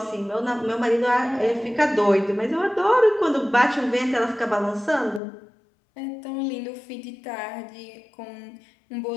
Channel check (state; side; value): drops out; right; at 5.2 s